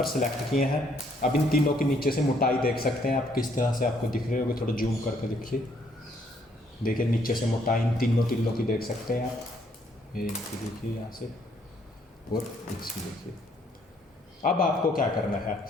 सिलेक्ट किए हैं। अब इन तीनों के नीचे से मोटाई देख सकते हैं आप, किस तरह से आपको दिख रहे होंगे। थोड़ा जूम करके देखिए, देखिए नीचे से मोटाई इन तीनों तिल्लों की देख सकते हैं आप। ये देखिए यहाँ से, और इसकी देखिए। अब आपको क्या करना है,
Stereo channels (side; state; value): both; normal; correlation 0.68